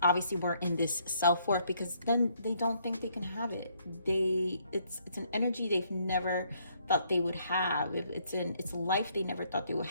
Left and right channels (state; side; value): inverted; both; correlation -0.69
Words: obviously were in this self-worth, because then they don't think they can have it. It's an energy they've never thought they would have. It's a life they never thought they would